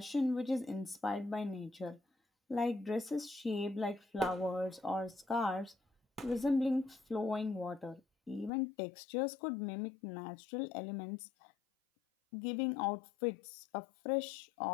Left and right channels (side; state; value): right; drops out; at 8.5 s